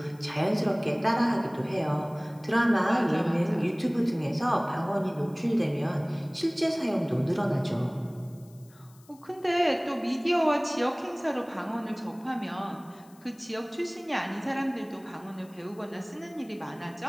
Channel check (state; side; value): noise; left; hiss, 28 dB below the sound